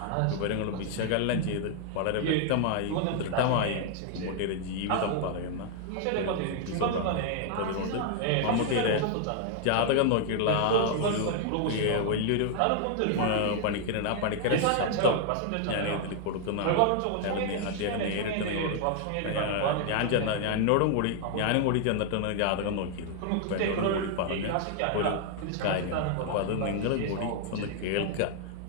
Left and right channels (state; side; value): different; both; correlation 0.00